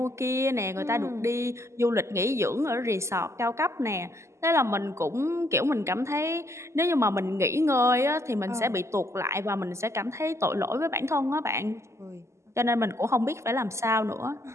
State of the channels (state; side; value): late; left; 0.13 ms